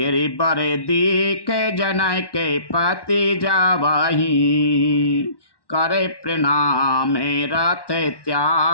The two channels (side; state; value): right; late; 1.1 ms